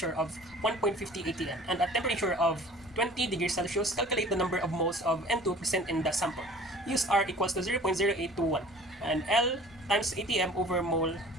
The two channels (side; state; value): both; normal; correlation 0.47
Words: of 1.50 atm and a temperature of 20 degrees Celsius. Calculate the number of moles of N2 present in the sample. Use R equals to 0.0821 and L times atm over mole